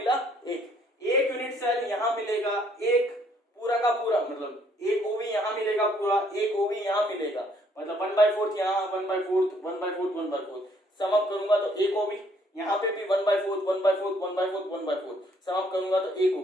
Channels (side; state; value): both; normal; correlation 0.65